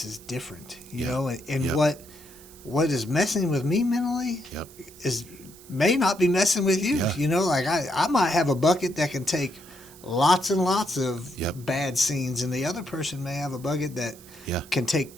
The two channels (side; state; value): right; noise; hiss, 21 dB below the sound